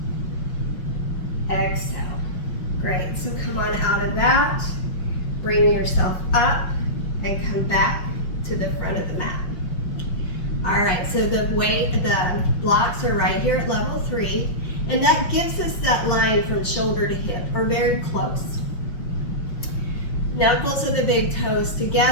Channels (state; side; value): late; right; 5.7 ms